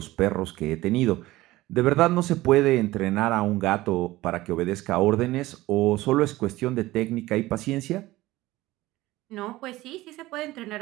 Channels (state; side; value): quieter; left; 17.9 dB